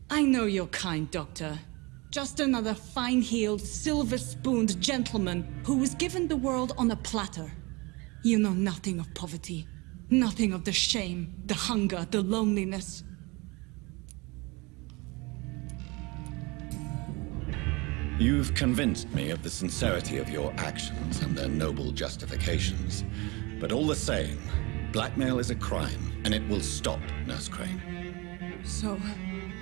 I know you're kind, Doctor. Just another fine-heeled, silver-spooned gentleman who was given the world on a platter. You know nothing of poverty. Nothing of the shame, the hunger, the loneliness. You've convinced me of the sincerity of your actions and their noble justifications. But all the same, blackmail is a crime, and it will stop, Nurse Crane. So,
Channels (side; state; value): left; quieter; 25.8 dB